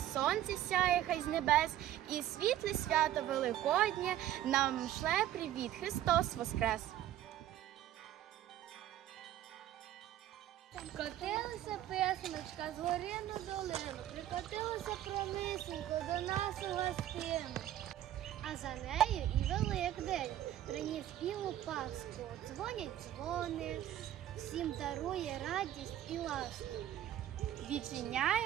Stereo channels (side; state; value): left; quieter; 12.5 dB